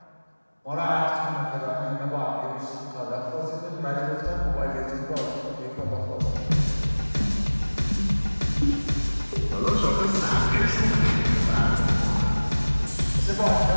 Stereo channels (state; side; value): inverted; both; correlation -1.00